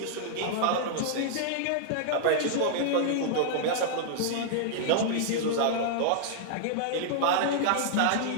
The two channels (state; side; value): different; both; correlation -0.01